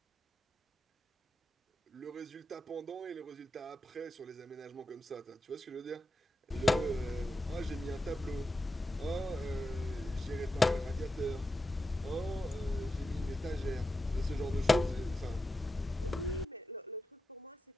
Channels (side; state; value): both; normal; correlation 0.90